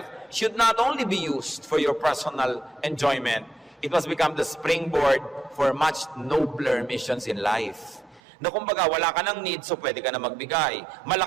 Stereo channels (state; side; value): drops out; left; at 8.2 s